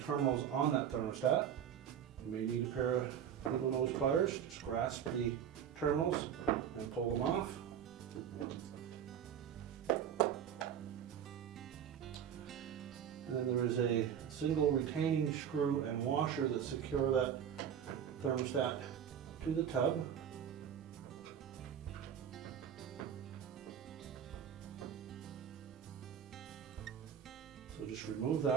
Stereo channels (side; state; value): left; quieter; 8.9 dB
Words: on that thermostat. You may need a pair of needle nose pliers. Just grasp the terminals and pull them off. And then there is a single retaining screw and washer that secure that thermostat to the tub. So just remove